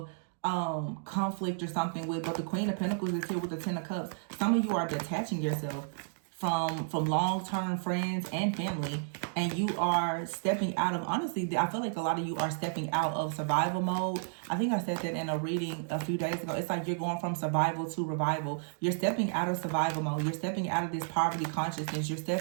conflict or something with. But the Queen of Pentacles is here with the Ten of Cups. Some of you are detaching yourself from long-term friends and family, and you are stepping out of, honestly, I feel like a lot of you are stepping out of survival mode. I think I said that in a reading a few days ago. It's like you're going from survival to revival. You're stepping out of survival mode. You're stepping out of this poverty consciousness. You're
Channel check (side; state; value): left; silent; digital silence